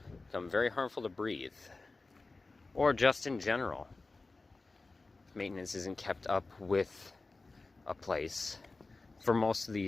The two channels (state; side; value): quieter; right; 3.6 dB